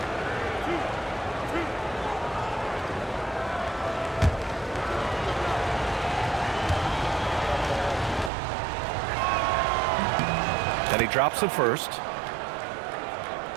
And he drops it first.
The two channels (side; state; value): left; drops out; at 8.3 s